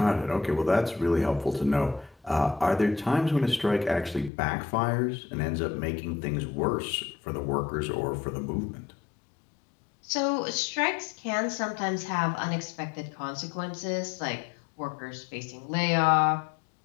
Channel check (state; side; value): drops out; right; at 4.3 s